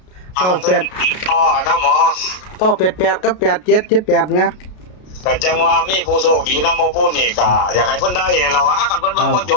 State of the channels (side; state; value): right; late; 33 ms